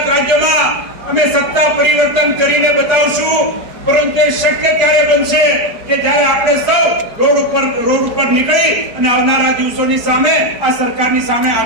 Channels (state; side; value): late; left; 4.8 ms